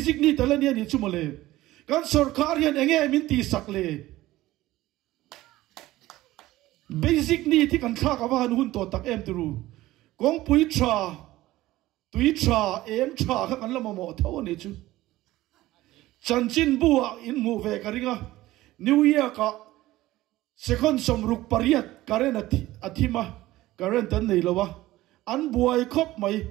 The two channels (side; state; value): left; quieter; 16.8 dB